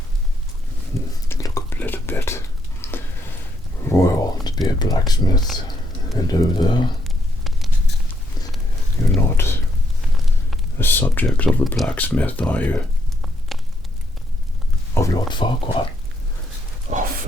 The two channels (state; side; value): normal; both; correlation 0.75